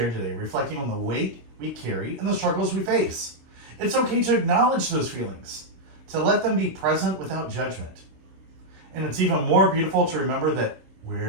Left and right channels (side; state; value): left; late; 26 ms